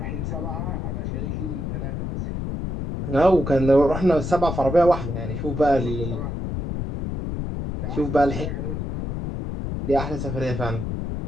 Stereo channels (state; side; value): noise; left; rumble, 3 dB below the sound